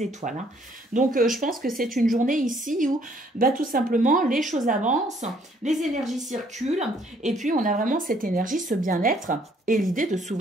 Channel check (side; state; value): both; normal; correlation 0.64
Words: étoiles, hein. Donc je pense que c'est une journée ici où tout simplement les choses avancent, les énergies circulent, et puis on a vraiment cette énergie, ce bien-être, et l'idée de